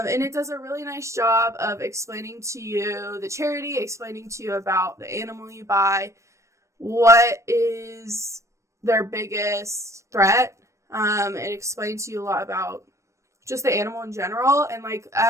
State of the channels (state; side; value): late; left; 0.15 ms